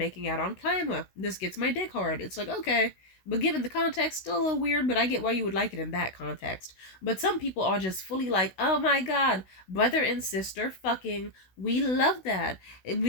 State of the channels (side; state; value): right; late; 16 ms